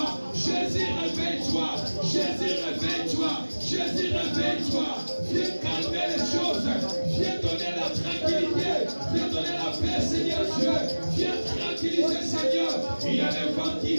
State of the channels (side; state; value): both; inverted; correlation -1.00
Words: Jésus, réveille-toi. Jésus, réveille-toi. Jésus, réveille-toi. Viens calmer les choses. Viens donner la tranquillité. Viens donner la paix, Seigneur Dieu. Viens tranquilliser, Seigneur. Il y a des vents qui